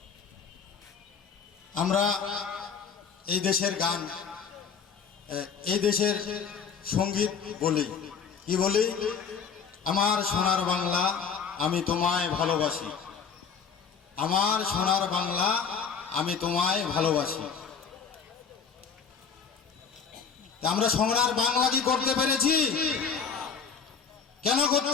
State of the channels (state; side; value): quieter; right; 6.3 dB